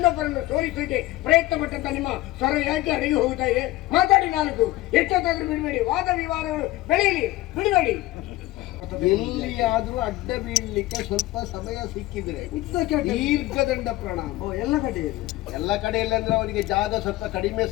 ಸೋಲಿಸಲಿಕ್ಕೆ ಪ್ರಯತ್ನ ಪಟ್ಟಂತ ನಿಮ್ಮ ಸ್ವರ ಯಾಕೆ ಅಡಗಿ ಹೋಗ್ತಾ ಇದೆ? ಮಾತಾಡಿ ನಾಲ್ಕು, ಎಷ್ಟೊತ್ತಾದ್ರೂ ಬಿಡಬೇಡಿ, ವಾದ ವಿವಾದಗಳು ಬೆಳೆಯಲಿ, ಬಿಡಬೇಡಿ. ಎಲ್ಲಿಯಾದ್ರೂ ಅಡ್ಡ ಬೀಳಲಿಕ್ಕೆ ಸ್ವಲ್ಪ ಸಮಯ ಸಿಕ್ಕಿದ್ರೆ ದೀರ್ಘದಂಡ ಪ್ರಣಾಮ ಎಲ್ಲ ಕಡೆಯಲ್ಲಿ ಅಂದ್ರೆ ಅವನಿಗೆ ಜಾಗ ಸ್ವಲ್ಪ ಕಡಿಮೆ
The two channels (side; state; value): right; quieter; 17.6 dB